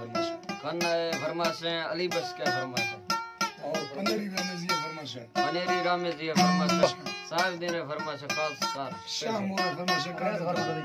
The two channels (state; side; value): identical; both; correlation 1.00